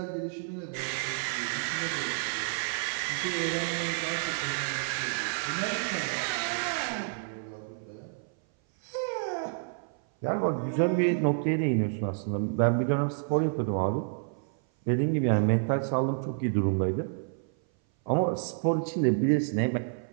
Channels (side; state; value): left; silent; 57 dB below the other